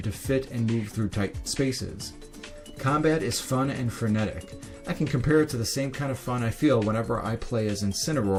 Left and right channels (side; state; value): both; identical; correlation 1.00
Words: to fit and move through tight spaces. Combat is fun and frenetic. I can compare it to the same kind of fun I feel whenever I play as